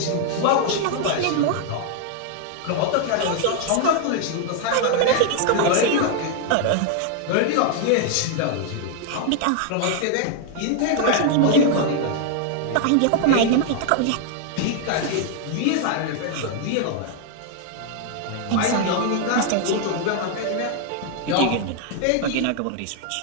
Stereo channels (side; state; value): both; different; correlation 0.00